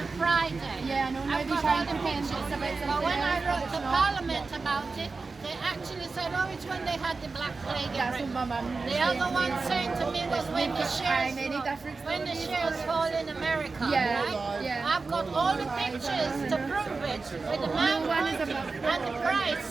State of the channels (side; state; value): left; quieter; 4.1 dB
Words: Friday. Yeah, I know. Now I've they got try all and the pretend pictures. it's about But something when I else, wrote but to it's not. Parliament about it, they actually said, oh, it's when they had the Black Plague in That's what Britain. my mum was The saying. other one saying to me was when the shares any difference when the to shares fall in America, Yeah, right? yeah. I've got all the pictures to prove it with the man one is about and the